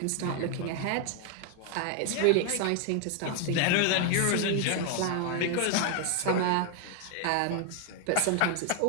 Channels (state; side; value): different; both; correlation 0.00